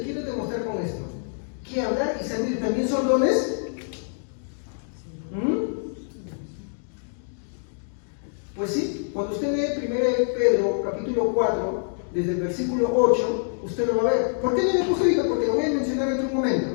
quiero demostrar con esto? Que hablar y servir también son dones. Pues sí, cuando usted lee 1 Pedro capítulo 4, desde el versículo 8, usted lo va a ver. ¿Por qué no le puse ahorita? Porque lo voy a mencionar en otro momento.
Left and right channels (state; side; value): silent; right; digital silence